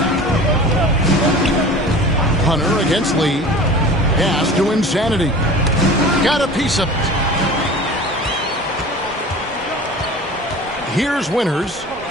Hunter against Lee. Pass to Insanity. Got a piece of it. Here's Winters.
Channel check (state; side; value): normal; both; correlation 0.39